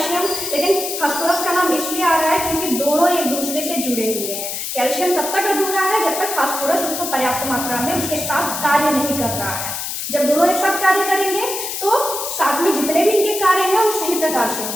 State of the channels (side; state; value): left; noise; hiss, 4 dB below the sound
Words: लेकिन फास्फोरस का नाम इसलिए आ रहा है क्योंकि दोनों एक दूसरे से जुड़े हुए हैं। कैल्शियम तब तक अधूरा है जब तक फास्फोरस उसको पर्याप्त मात्रा में उसके साथ कार्य नहीं कर रहा है। जब दोनों एक साथ कार्य करेंगे तो साथ में जितने भी इनके कार्य हैं वो सही प्रकार से